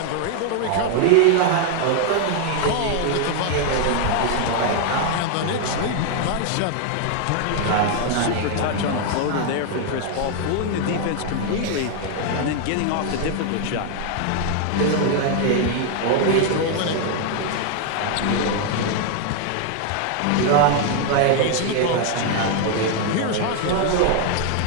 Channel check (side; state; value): both; different; correlation 0.00